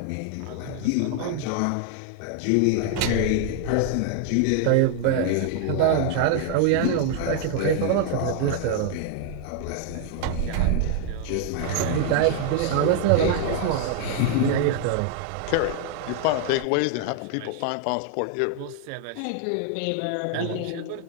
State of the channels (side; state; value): both; different; correlation 0.00